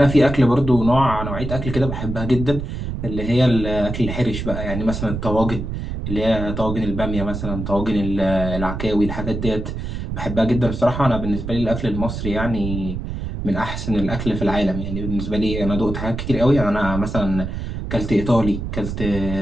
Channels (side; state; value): right; noise; rumble, 5 dB below the sound